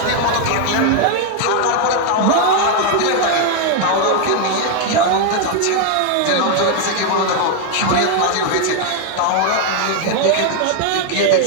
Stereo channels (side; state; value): both; different; correlation 0.01